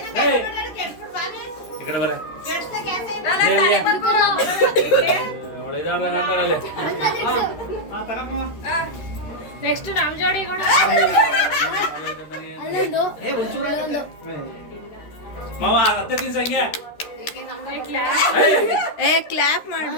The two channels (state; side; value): late; right; 13 ms